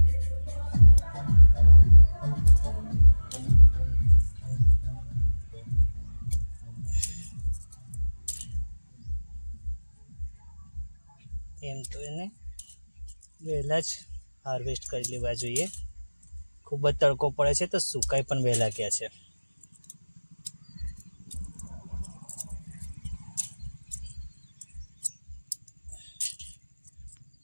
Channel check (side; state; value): both; inverted; correlation -1.00